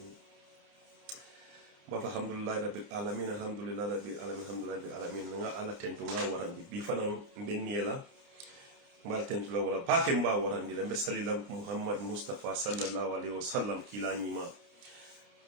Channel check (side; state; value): left; late; 29 ms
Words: Ba alhamdulillah rabbil alamin alhamdulillah rabbil alamin alhamdulillah rabbil alamin nga ala tentu nga warandi bi fanam benniela mbal tentu la wala pake mba warandi la sallallahu muhammad mustafa sallallahu alaihi wasallam kila nyima